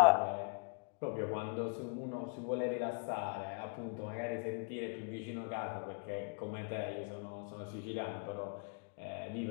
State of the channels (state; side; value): quieter; right; 39.1 dB